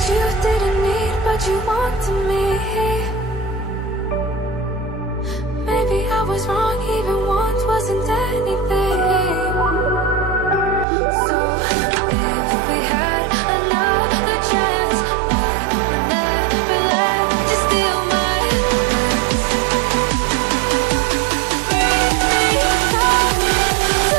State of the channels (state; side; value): drops out; left; at 10.9 s